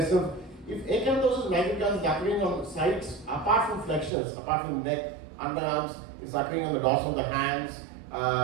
If acanthosis nigricans is occurring on sites apart from flexures, apart from neck, underarms, it's occurring on the dorsal of the hands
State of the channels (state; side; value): drops out; left; at 4.1 s